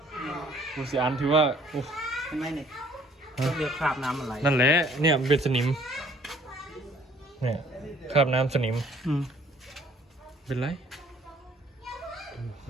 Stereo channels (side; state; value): both; normal; correlation 0.60